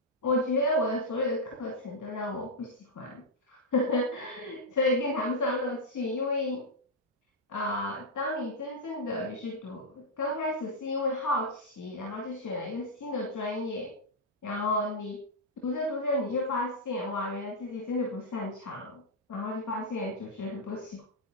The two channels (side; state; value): both; normal; correlation -0.05